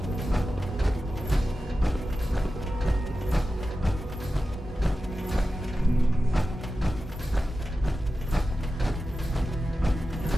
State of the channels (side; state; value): both; normal; correlation 0.93